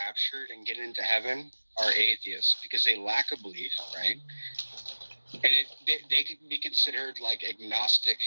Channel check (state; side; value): inverted; both; correlation -1.00